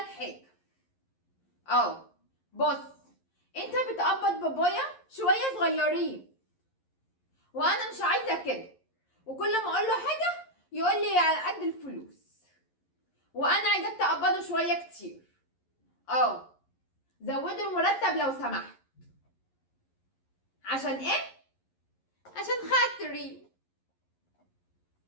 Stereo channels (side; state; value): right; late; 11 ms